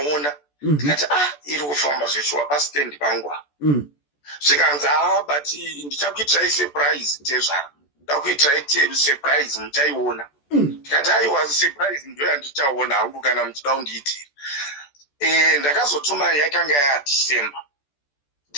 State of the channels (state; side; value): late; right; 14 ms